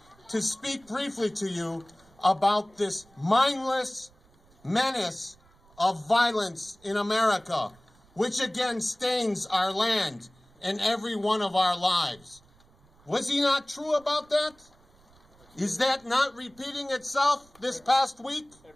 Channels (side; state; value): right; noise; rumble, 30 dB below the sound